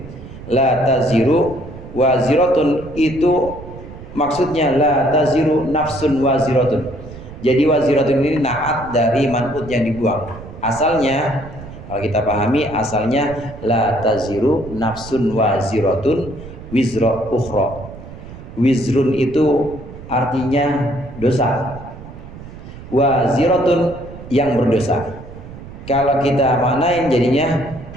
La taziru waziratun itu maksudnya la taziru nafsun waziratun. Jadi waziratun ini naat dari man'ut yang dibuang. Asalnya kalau kita pahami, asalnya la taziru nafsun waziratun wizra ukhra. Wizrun itu artinya dosa, waziratun yang berdosa. Kalau kita maknain jadinya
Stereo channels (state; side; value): noise; right; rumble, 14 dB below the sound